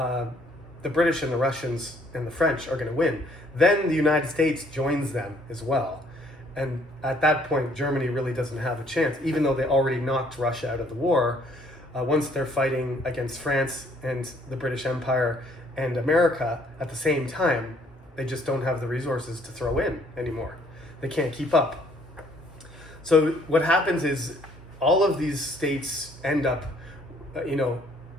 the British and the Russians and the French are going to win. Then the United States joins them as well. And at that point, Germany really doesn't have a chance, even though they already knocked Russia out of the war. Once they're fighting against France and the British Empire and America at the same time, they just don't have the resources to throw in anymore. They can't keep up. So what happens is all of these states end up,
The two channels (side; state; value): both; normal; correlation 0.63